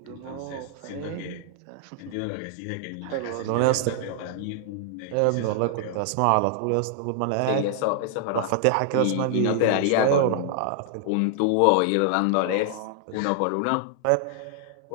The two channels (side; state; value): both; different; correlation -0.01